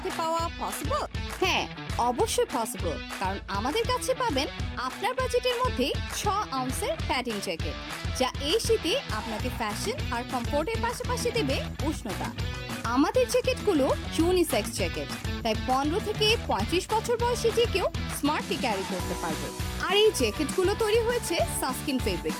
পাওয়া পসিবল? হ্যাঁ, অবশ্যই পসিবল, কারণ আমাদের কাছে পাবেন আপনার বাজেটের মধ্যে 6 আউন্সের প্যাডিং জ্যাকেট, যা এই শীতে আপনাকে ফ্যাশন আর কমফোর্টের পাশাপাশি দেবে উষ্ণতা। আমাদের জ্যাকেটগুলো ইউনিসেক্স জ্যাকেট, তাই 15 থেকে 35 বছর বয়সী যে কেউ স্মার্টলি ক্যারি করতে পারবে। আর এই জ্যাকেটগুলো তৈরি হয়েছে সানস্ক্রিন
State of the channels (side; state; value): both; identical; correlation 1.00